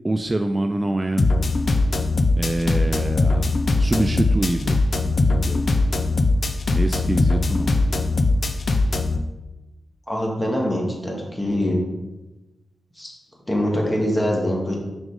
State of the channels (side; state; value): both; normal; correlation 0.92